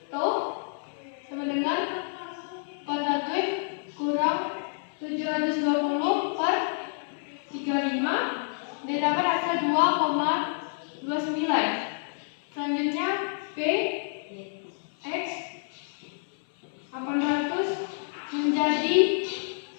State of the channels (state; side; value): silent; right; 59 dB below the other